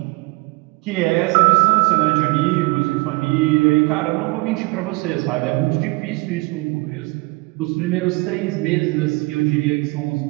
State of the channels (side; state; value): left; quieter; 25.3 dB